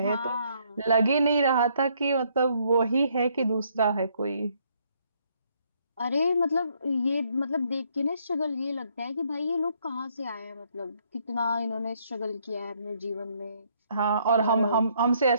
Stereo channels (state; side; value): inverted; both; correlation -0.69